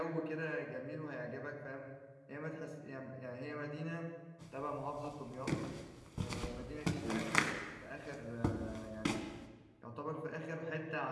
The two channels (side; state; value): both; identical; correlation 1.00